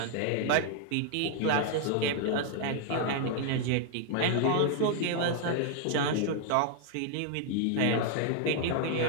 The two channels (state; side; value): different; both; correlation 0.00